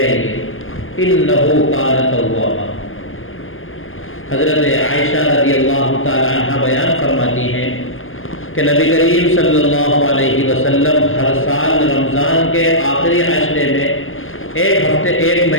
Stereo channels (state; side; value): late; right; 0.59 ms